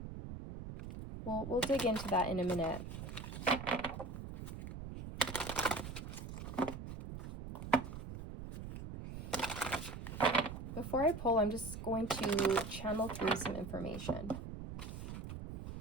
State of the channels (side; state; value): right; noise; rumble, 8 dB below the sound